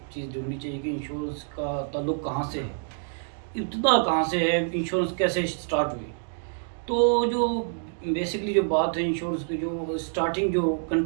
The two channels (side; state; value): left; silent; digital silence